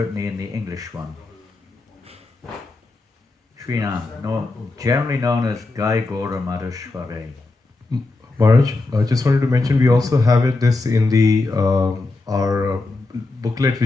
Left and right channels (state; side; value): quieter; right; 3.3 dB